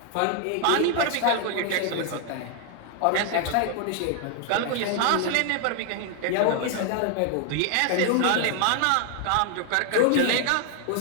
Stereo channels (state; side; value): different; both; correlation 0.00